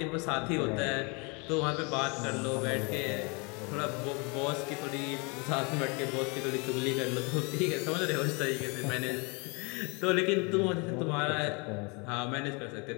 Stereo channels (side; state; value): right; quieter; 31.0 dB